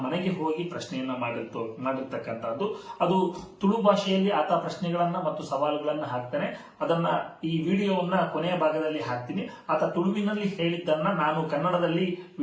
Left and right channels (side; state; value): both; identical; correlation 1.00